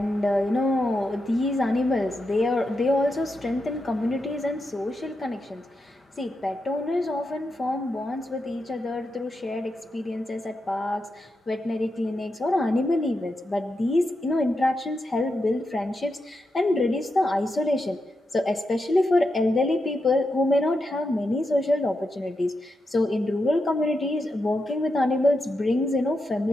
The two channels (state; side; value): normal; both; correlation 0.86